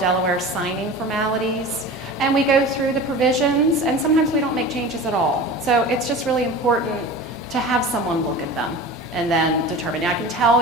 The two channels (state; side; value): normal; both; correlation 0.34